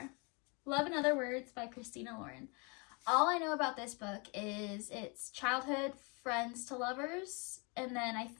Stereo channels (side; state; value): right; quieter; 31.5 dB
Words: Love in Other Words by Christina Lauren. All I know about this book is it's childhood friends to lovers, and then I